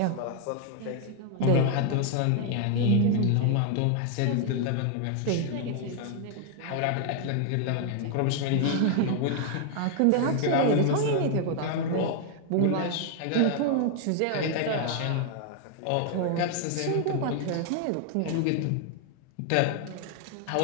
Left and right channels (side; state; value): both; different; correlation 0.00